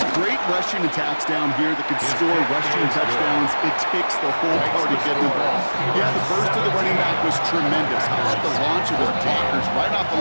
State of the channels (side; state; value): both; inverted; correlation -1.00